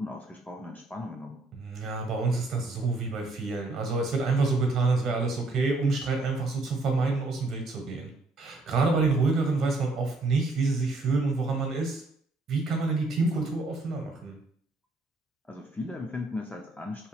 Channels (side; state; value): left; quieter; 3.1 dB